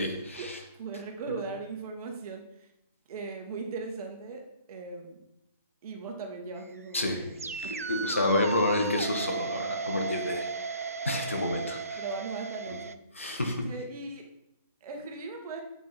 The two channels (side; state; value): both; inverted; correlation -0.53